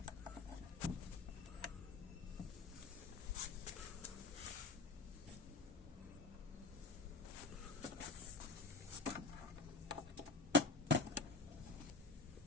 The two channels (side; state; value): right; quieter; 3.6 dB